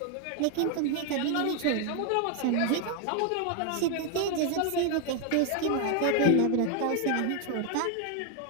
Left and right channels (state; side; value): different; both; correlation 0.01